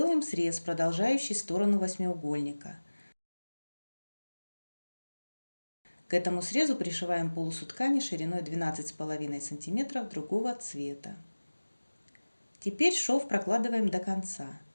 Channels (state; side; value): inverted; both; correlation -1.00